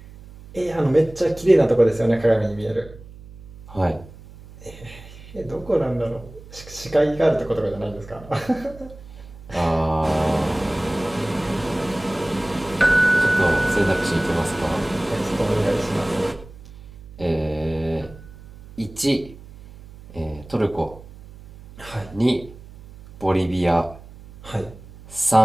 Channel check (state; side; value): noise; right; hum, 19 dB below the sound